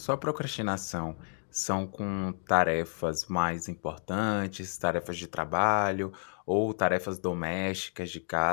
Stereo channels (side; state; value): right; silent; digital silence